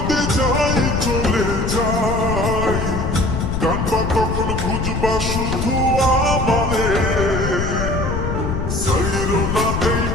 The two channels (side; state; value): left; noise; rumble, 2 dB below the sound